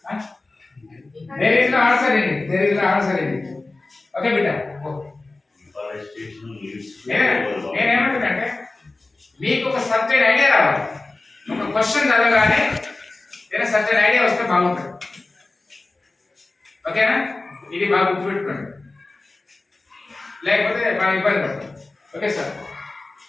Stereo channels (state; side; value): quieter; right; 3.2 dB